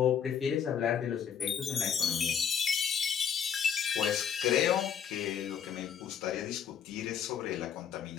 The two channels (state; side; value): quieter; right; 7.8 dB